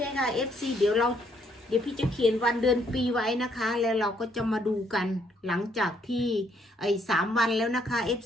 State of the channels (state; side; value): normal; both; correlation 0.70